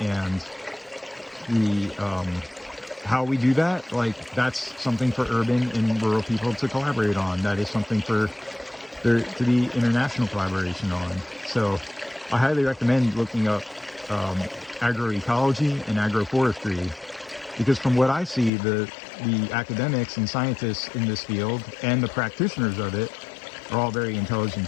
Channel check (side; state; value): right; drops out; at 18.5 s